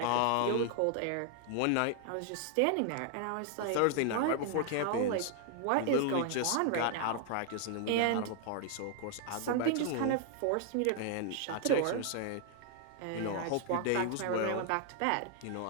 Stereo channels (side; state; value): both; different; correlation 0.00